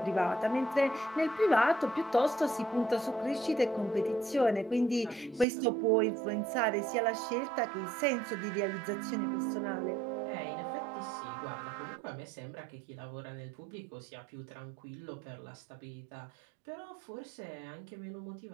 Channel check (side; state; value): left; drops out; at 5.5 s